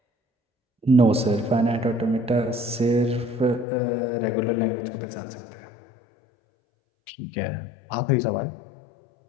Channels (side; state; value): right; drops out; at 3.7 s